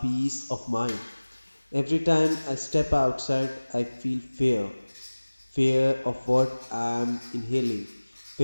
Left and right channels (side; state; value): both; inverted; correlation -1.00